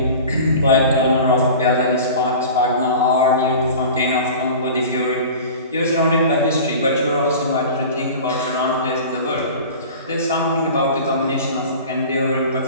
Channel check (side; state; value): both; inverted; correlation -0.38